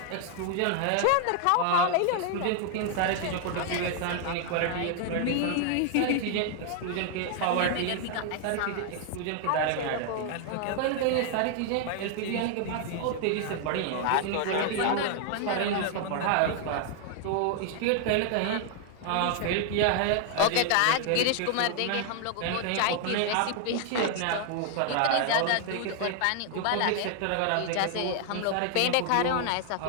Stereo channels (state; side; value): different; both; correlation 0.00